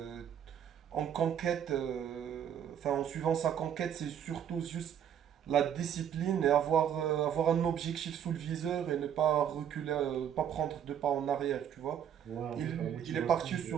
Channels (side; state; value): left; quieter; 9.2 dB